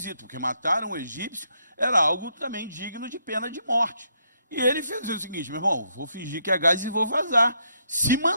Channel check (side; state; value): both; inverted; correlation -0.75